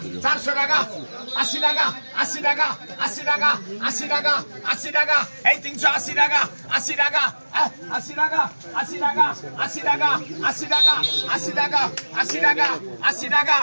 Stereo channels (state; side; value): inverted; both; correlation -1.00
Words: 400 টাকা, 80 টাকা, 80 টাকা, 80 টাকা, 80 টাকা, 80 টাকা, এই 380 টাকা, 80 টাকা, 80 টাকা, 80 টাকা, 80 টাকা, 80 টাকা, 80 টাকা, 80 টাকা, 80 টাকা,